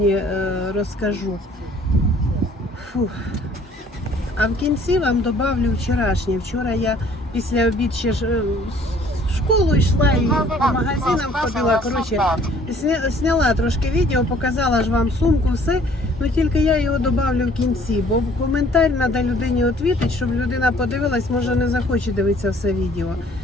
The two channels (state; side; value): normal; both; correlation 0.56